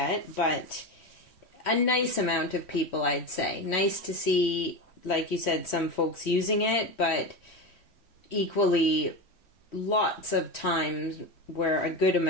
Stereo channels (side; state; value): right; late; 3.1 ms